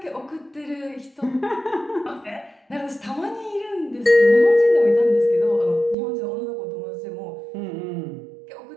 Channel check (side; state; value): left; drops out; at 6.0 s